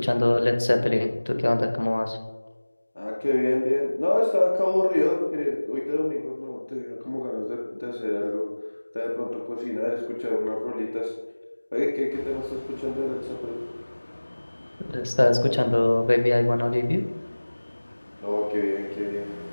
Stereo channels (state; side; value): inverted; both; correlation -1.00